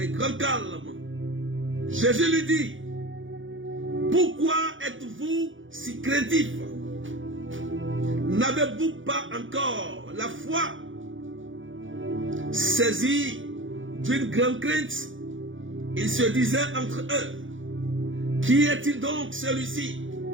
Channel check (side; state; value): left; late; 0.57 ms